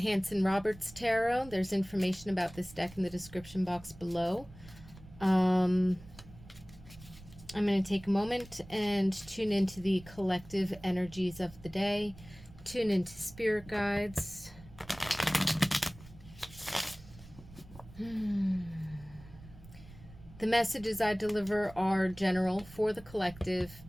Tarot. There's information about this deck in the description box below. I'm going to take a moment and tune into the collective energies of the day. Tune into spirit guides. The messages I deliver are general for the collective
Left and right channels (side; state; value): right; noise; rumble, 19 dB below the sound